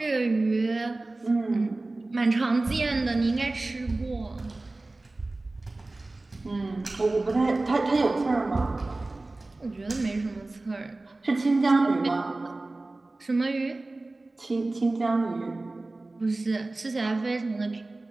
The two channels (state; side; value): quieter; left; 3.0 dB